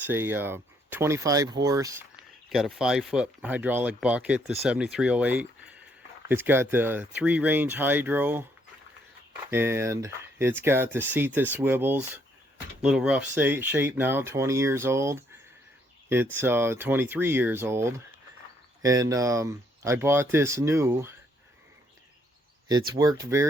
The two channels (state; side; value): normal; both; correlation 0.70